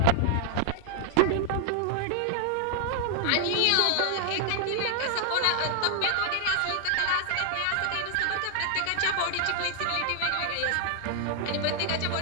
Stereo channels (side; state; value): both; different; correlation 0.00